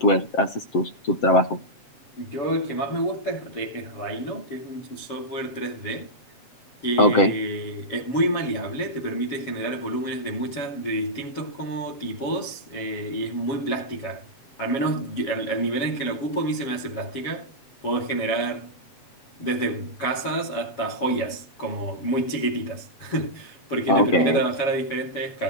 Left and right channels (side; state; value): right; late; 7.2 ms